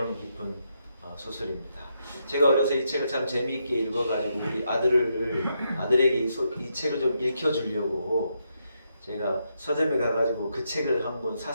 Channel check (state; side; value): inverted; both; correlation -0.81